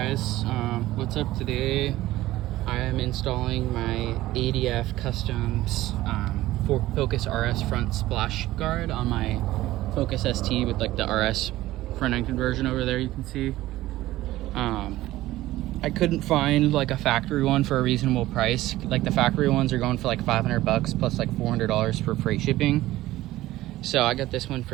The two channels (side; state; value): left; quieter; 16.2 dB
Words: what's up today? I am installing my ADF Customs Focus RS front splash guard on my Focus ST with like the RS front end conversion over there, you can see. I couldn't find like a factory one for a reasonable price. Like the factory ones are going for like $500 plus like $400 for freight shipping. So I got this one for